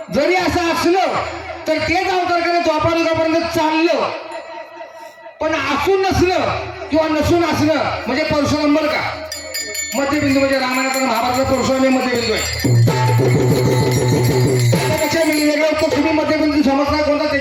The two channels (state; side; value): identical; both; correlation 1.00